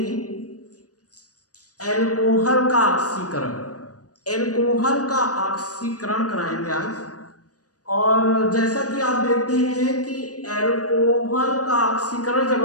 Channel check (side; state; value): right; late; 0.67 ms